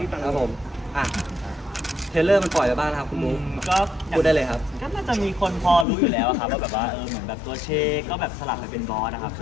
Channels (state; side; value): drops out; right; at 5.9 s